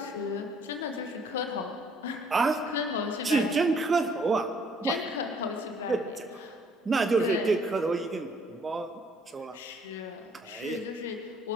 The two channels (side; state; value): both; normal; correlation 0.63